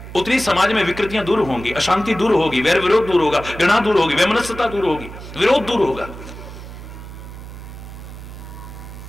उतनी समाज में विकृतियां दूर होंगी, अशांति दूर होगी, वैर विरोध दूर होगा, घृणा दूर होगी, वैमनस्यता दूर होगी, विरोध दूर होगा।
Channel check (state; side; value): noise; right; hum, 13 dB below the sound